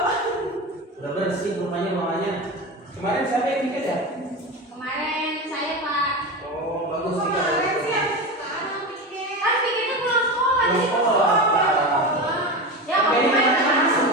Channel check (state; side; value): normal; both; correlation 0.23